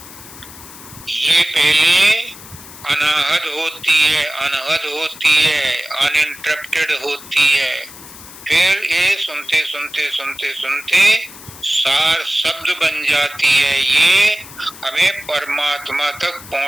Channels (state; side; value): noise; left; hiss, 17 dB below the sound